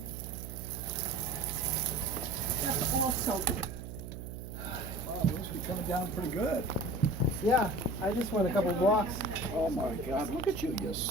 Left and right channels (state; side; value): noise; right; hum, 9 dB below the sound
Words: That's all soaked. Wow, it must be coming down pretty good. Yeah, I just went a couple blocks. Oh my God, look at you, you're